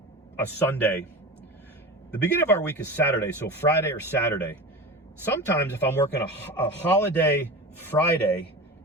Sunday, the beginning of our week is Saturday, so Friday or Saturday. Sometimes if I'm working a holiday Friday,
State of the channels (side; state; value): both; normal; correlation 0.30